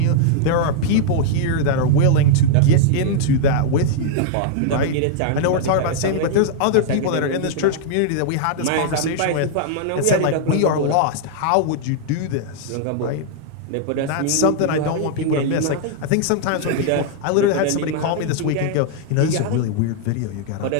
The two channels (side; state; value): both; different; correlation -0.01